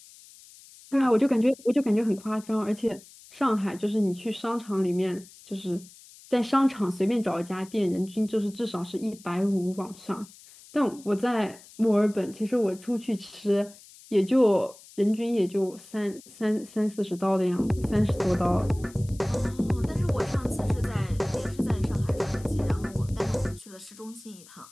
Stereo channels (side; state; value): left; noise; hiss, 22 dB below the sound